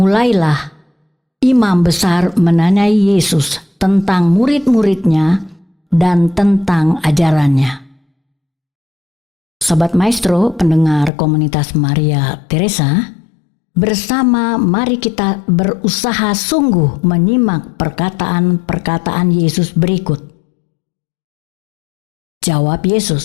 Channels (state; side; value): drops out; right; at 11.1 s